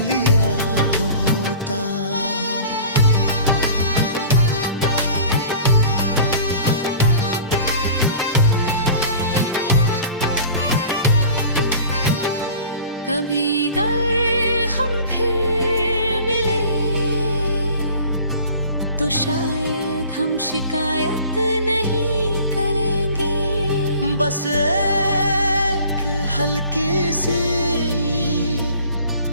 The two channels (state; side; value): inverted; both; correlation -0.45